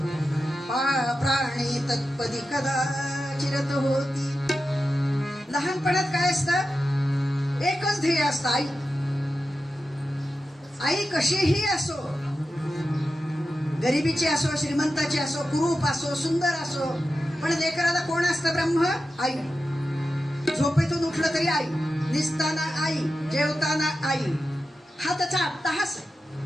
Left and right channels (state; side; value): normal; both; correlation 0.91